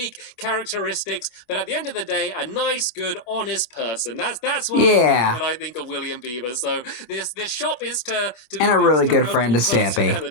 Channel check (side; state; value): right; late; 26 ms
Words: characteristics, but at the end of the day, a nice, good, honest person. That's what I think of William Beaver. So this shop is to be and a really good friend to